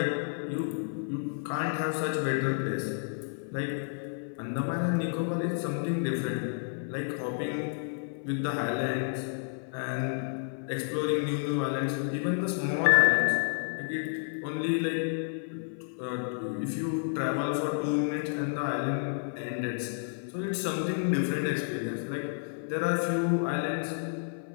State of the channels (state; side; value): silent; right; 57 dB below the other